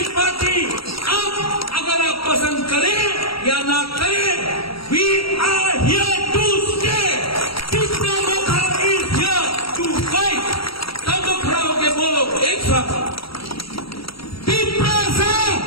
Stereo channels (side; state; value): right; late; 0.75 ms